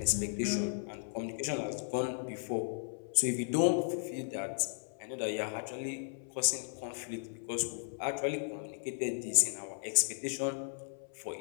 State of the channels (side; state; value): right; silent; 54 dB below the other